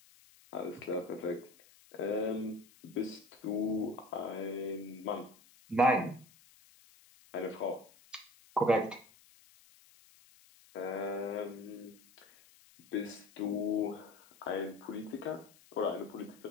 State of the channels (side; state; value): left; noise; hiss, 26 dB below the sound